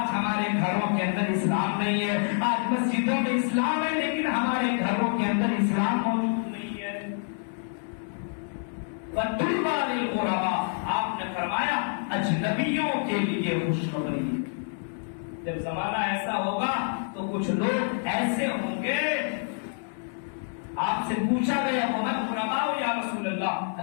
ہمارے گھروں کے اندر اسلام نہیں ہے، آج مسجدوں میں اسلام ہے لیکن ہمارے گھروں کے اندر اسلام موجود نہیں ہے۔ وَطُوبَى لِلْغُرَبَاء، آپ نے فرمایا اجنبیوں کے لیے خوشخبری۔ جب زمانہ ایسا ہوگا تو کچھ لوگ ایسے ہوں گے، آپ سے پوچھا گیا وَمَنْ غُرَبَاءُ یا رسول اللہ،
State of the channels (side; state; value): right; silent; digital silence